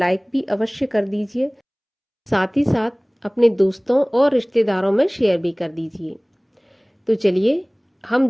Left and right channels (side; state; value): both; identical; correlation 1.00